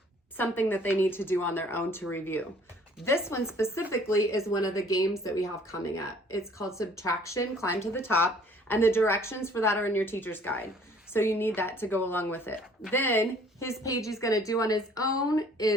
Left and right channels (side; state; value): both; normal; correlation 0.56